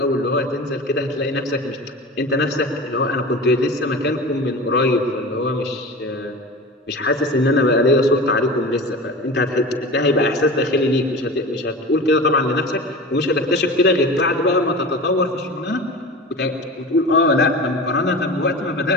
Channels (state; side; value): normal; both; correlation 0.33